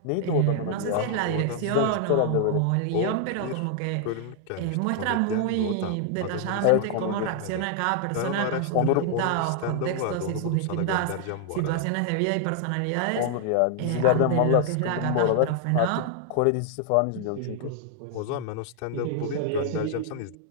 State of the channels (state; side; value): different; both; correlation 0.00